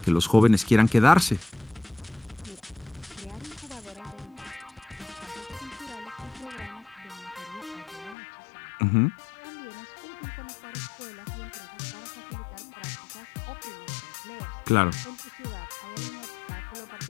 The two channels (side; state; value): right; drops out; at 8.2 s